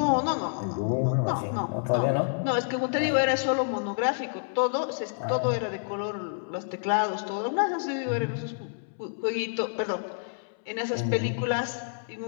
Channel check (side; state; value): right; silent; 59 dB below the other